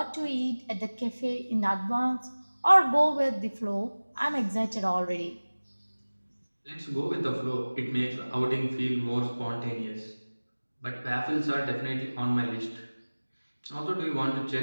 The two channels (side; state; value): both; inverted; correlation -1.00